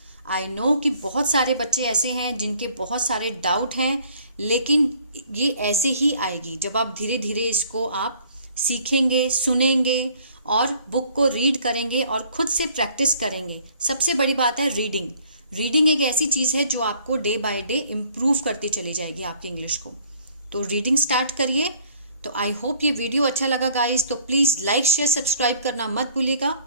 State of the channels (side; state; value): both; inverted; correlation -0.58